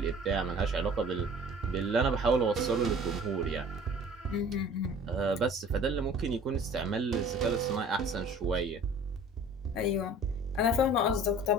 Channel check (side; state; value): both; normal; correlation 0.47